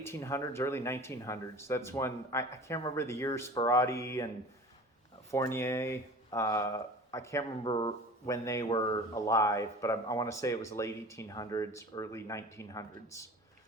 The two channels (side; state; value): both; normal; correlation 0.39